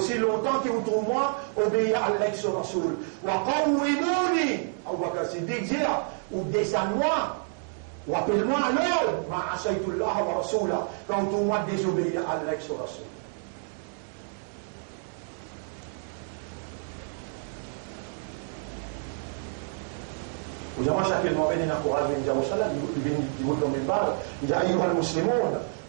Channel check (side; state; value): left; silent; 59 dB below the other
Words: longtemps que vous trouvez moi, obéir à l'ex rasoul. Wa qawwimuni, Abu Bakr Siddiq dit, ou descends-moi, ou appelle-moi à l'ordre, ma asaytullah wa rasulah, quand vous moi désobéir à l'ex rasoul. وجماعة شكل ما بيننا قرآن من Jérusalem, ils vont tomber par, il dit aïe al muslimoun,